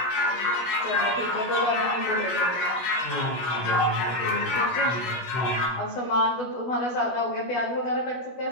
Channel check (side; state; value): right; late; 16 ms